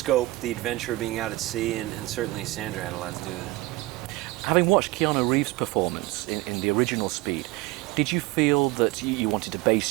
the adventure of being out at sea, and certainly Sandra had a lot to do with it. Having watched Keanu Reeves' performance in the original Speed, did you feel that you wanted to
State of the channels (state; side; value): quieter; left; 20.0 dB